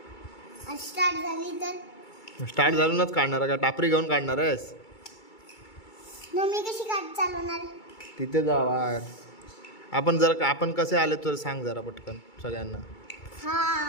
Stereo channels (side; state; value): right; late; 2.3 ms